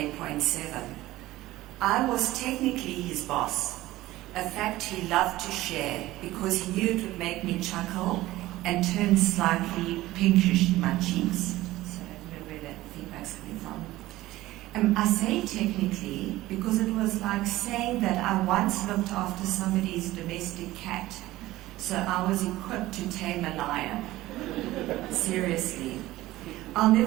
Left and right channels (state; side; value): quieter; left; 16.9 dB